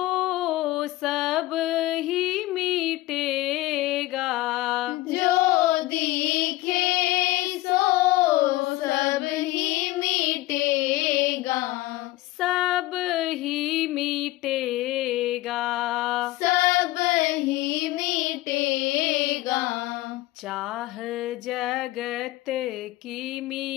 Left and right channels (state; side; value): quieter; right; 17.8 dB